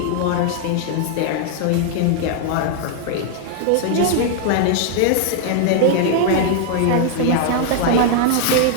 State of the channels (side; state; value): both; different; correlation -0.01